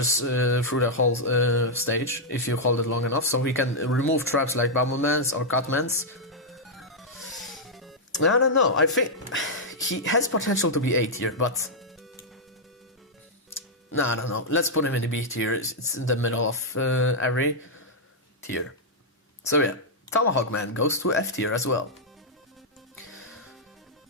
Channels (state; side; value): normal; both; correlation -0.05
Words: through the whole stage, if you hold it long enough. So he can remove traps like Bubbleman's or Cutman's. I don't know, I think he has potential to be A tier, but no, I don't know. Let's put him in the B tier. It's in the middle of every tier. So yeah, Tomahawk Man goes to F tier as well.